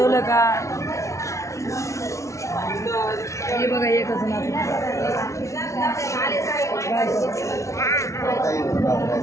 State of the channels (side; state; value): right; late; 0.14 ms